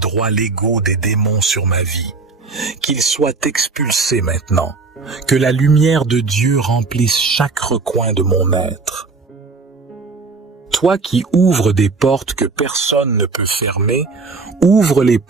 légaux des démons sur ma vie. Qu'ils soient expulsés maintenant. Que la lumière de Dieu remplisse chaque recoin de mon être. Toi qui ouvres des portes que personne ne peut fermer, ouvre les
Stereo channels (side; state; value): left; quieter; 4.2 dB